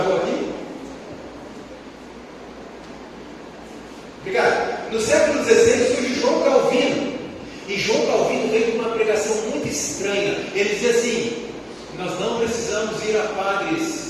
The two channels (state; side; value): identical; both; correlation 1.00